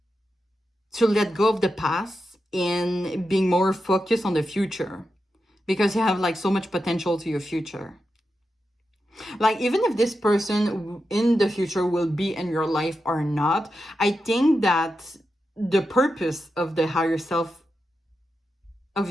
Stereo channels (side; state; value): both; normal; correlation 0.89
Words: to let go of the past and being more focused on the future, because you have like so much potential to your future. Like, even if this person in the future will be in your life or not, I think that the purpose of the higher self, of